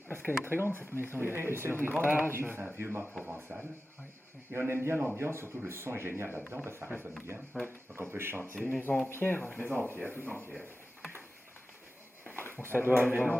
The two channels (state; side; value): normal; both; correlation 0.94